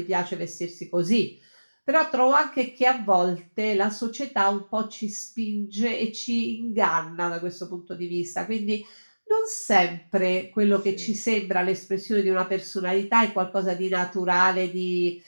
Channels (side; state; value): both; inverted; correlation -1.00